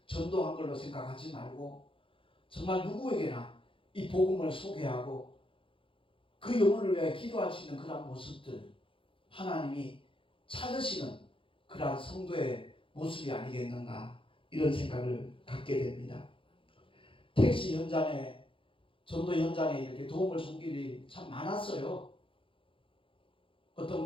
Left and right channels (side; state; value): right; late; 0.25 ms